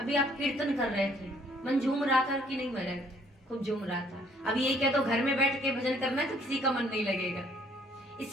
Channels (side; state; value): both; normal; correlation 0.62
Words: आप कीर्तन कर रहे थे, मन झूम रहा था कि नहीं महाराज? खूब झूम रहा था। अभी ये क्या तो घर में बैठ के भजन करना है तो किसी का मन नहीं लगेगा।